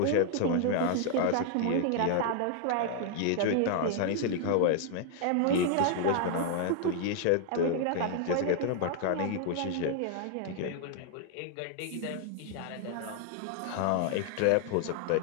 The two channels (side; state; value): both; different; correlation 0.00